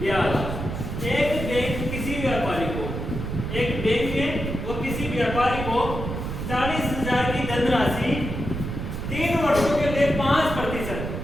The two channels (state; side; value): noise; right; rumble, 5 dB below the sound